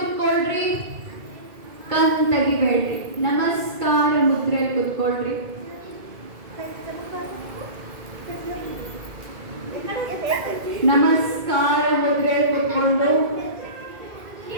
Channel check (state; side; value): late; left; 2.2 ms